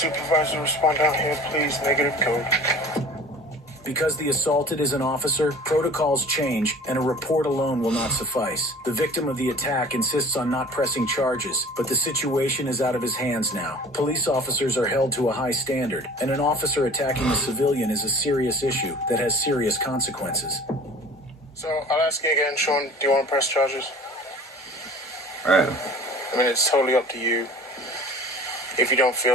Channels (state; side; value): normal; both; correlation 0.44